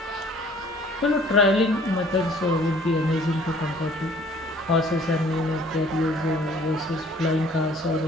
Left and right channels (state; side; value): normal; both; correlation 0.55